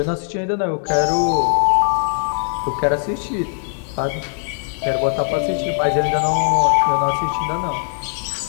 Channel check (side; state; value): right; silent; 65 dB below the other